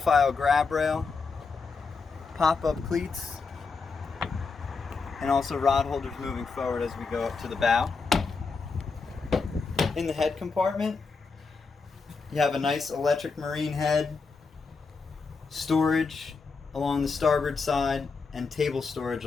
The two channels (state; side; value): quieter; right; 4.7 dB